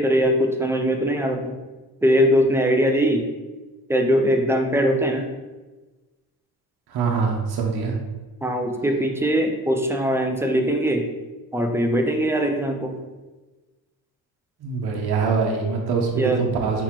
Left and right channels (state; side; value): normal; both; correlation 0.54